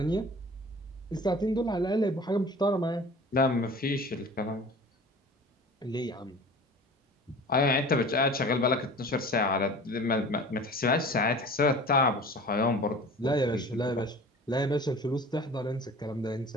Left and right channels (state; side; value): normal; both; correlation 0.41